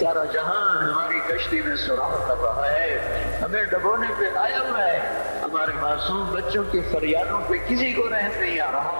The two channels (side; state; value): both; inverted; correlation -1.00